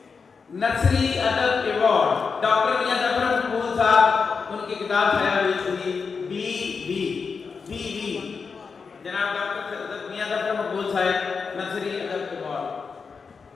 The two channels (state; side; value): quieter; right; 5.3 dB